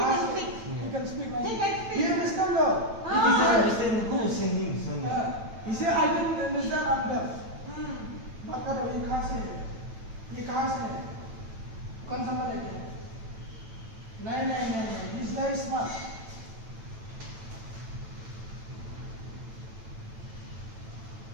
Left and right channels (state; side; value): late; left; 9.0 ms